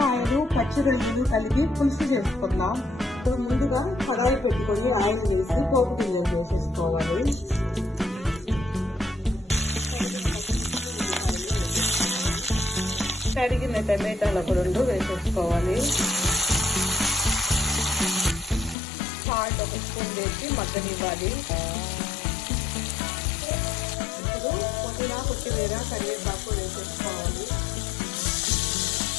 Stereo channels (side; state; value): right; drops out; at 18.8 s